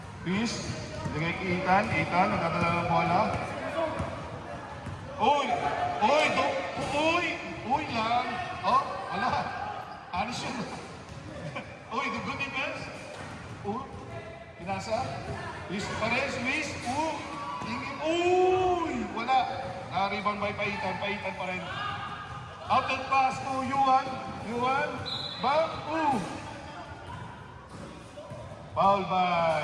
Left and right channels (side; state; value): both; identical; correlation 1.00